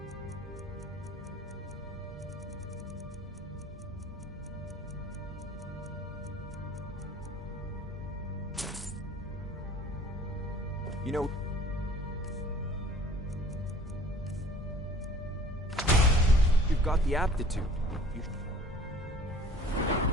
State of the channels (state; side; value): normal; both; correlation 0.50